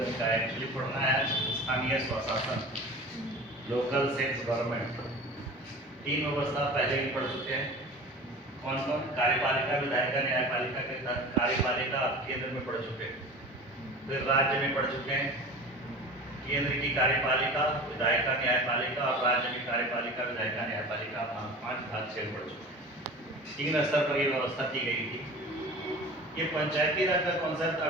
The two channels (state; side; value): normal; both; correlation 0.37